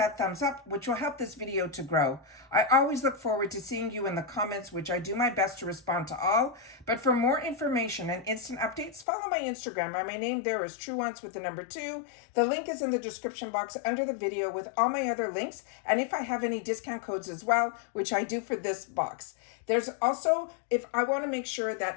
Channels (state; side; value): drops out; right; at 9.1 s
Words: thumbs up, which will help this video to grow. I always look forward to seeing you in the comments, which I do my best to respond to all. But for more information and instant updates, follow my Instagram. My name there is Truewants with the number 2. The link is in the description box under the video with all my other links. And if I have any discount codes as well, which I do for this box. There's also, if I want to make sure